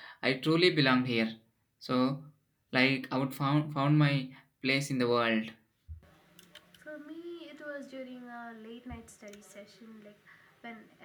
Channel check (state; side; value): identical; both; correlation 1.00